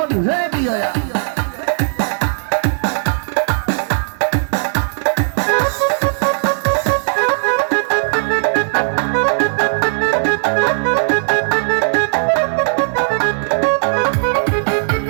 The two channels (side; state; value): left; silent; digital silence